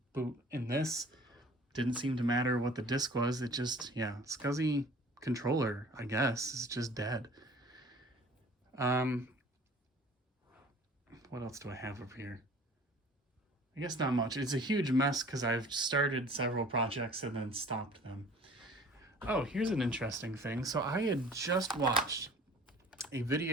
boot in this. Didn't seem to matter what the disk was, it just, yeah, SCSI controller, I guess, is just dead. What else do I have up here? I guess not much. It's a huge mess because I've started several projects and then stopped them. Oh, here's an interesting thing. So I had just watched a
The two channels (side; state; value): both; normal; correlation 0.48